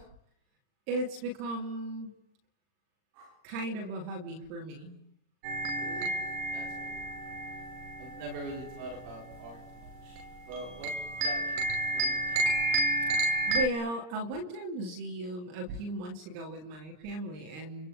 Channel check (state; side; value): late; left; 39 ms